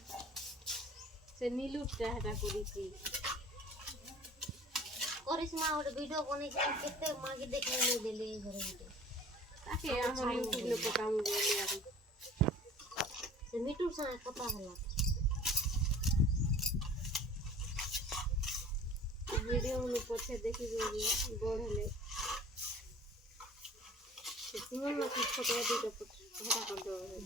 ସେ नीलुटा ହେଟା କରିଛି କରିସ୍ମା ଗୋଟେ ଭିଡିଓ ବନେଇଛି କେତେ ମାଗି ଦେଖି ନେଇ ଦେଲେ ଘରେ ଗୋଟେ ତାକେ ଆମର ୟୁଟ୍ୟୁବ ରେ ପକାମୁ ବୋଲି ଆରୁ ସେ ମିଟୁ ସାଙ୍ଗେ କଥା ହେଲା वीडियो में पछे देखि बढ़ले तुमन ना कुछ फोटो दे तो हटा कर दो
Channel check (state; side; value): normal; both; correlation 0.46